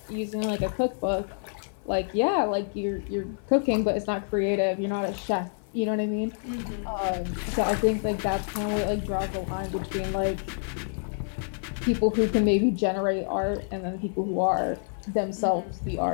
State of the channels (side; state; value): right; silent; 55 dB below the other